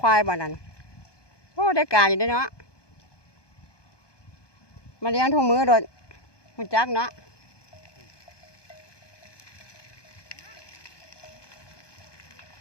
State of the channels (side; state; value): right; late; 1.2 ms